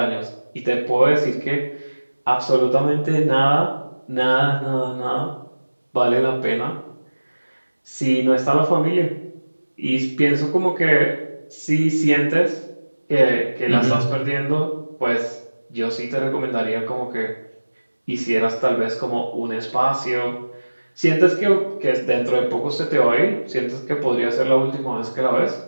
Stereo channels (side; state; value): both; inverted; correlation -1.00